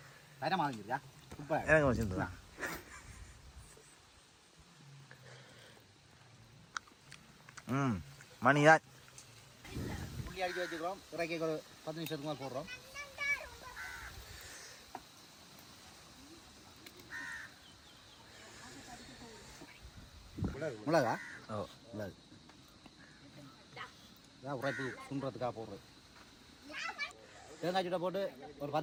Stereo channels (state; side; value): identical; both; correlation 1.00